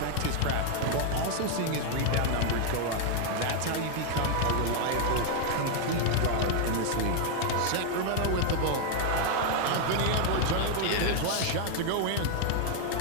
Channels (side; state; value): both; different; correlation 0.00